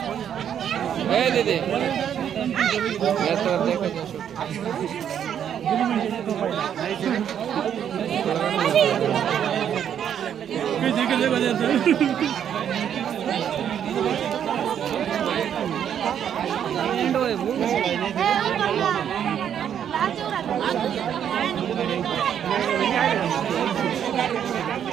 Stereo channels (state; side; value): quieter; left; 9.1 dB